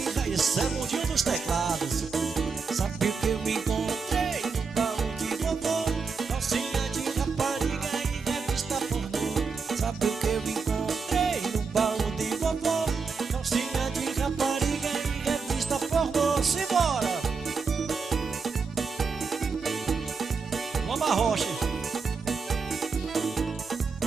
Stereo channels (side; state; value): left; quieter; 5.1 dB